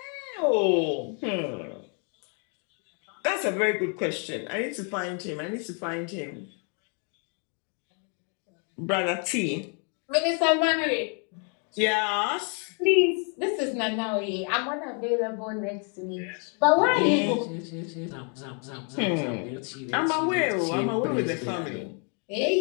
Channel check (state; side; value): quieter; right; 39.6 dB